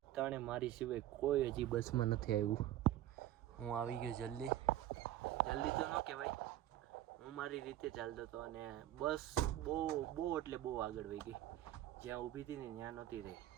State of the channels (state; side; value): quieter; left; 13.5 dB